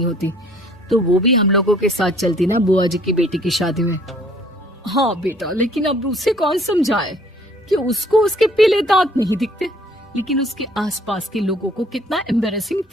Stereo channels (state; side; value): normal; both; correlation 0.58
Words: होती, तो वो भी हम लोगों के साथ चलती ना बुआ जी की बेटी की शादी में। हाँ बेटा, लेकिन अब उसे कौन समझाए कि उसको उसके पीले दांत नहीं दिखते, लेकिन उसके आसपास के लोगों को कितना एम्बैरेसिंग